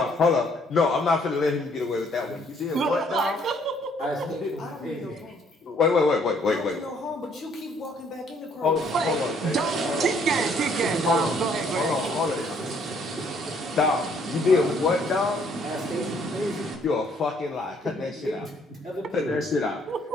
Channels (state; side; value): normal; both; correlation 0.65